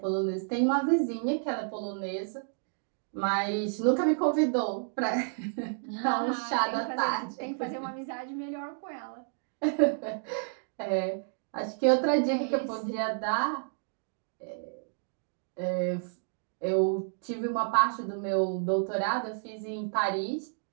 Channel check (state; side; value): silent; left; digital silence